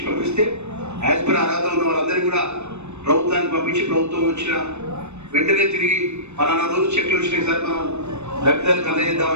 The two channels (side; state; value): left; late; 0.82 ms